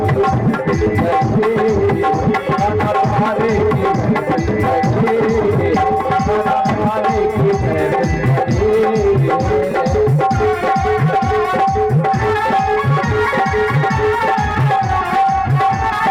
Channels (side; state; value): both; identical; correlation 1.00